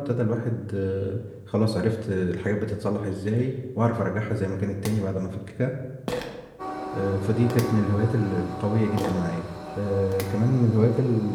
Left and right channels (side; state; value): both; identical; correlation 1.00